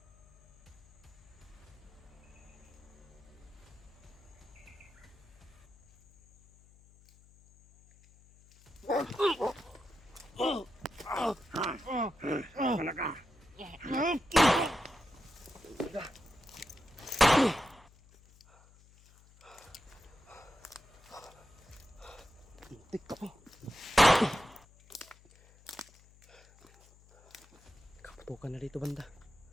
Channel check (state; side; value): noise; left; hum, 26 dB below the sound